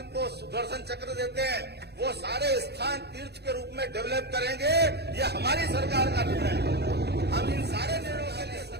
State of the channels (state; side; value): late; left; 0.48 ms